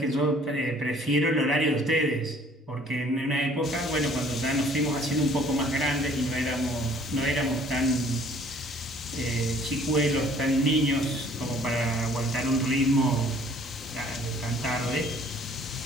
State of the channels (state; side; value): normal; both; correlation 0.56